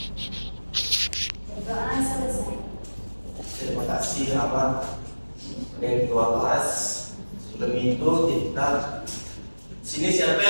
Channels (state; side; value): inverted; both; correlation -1.00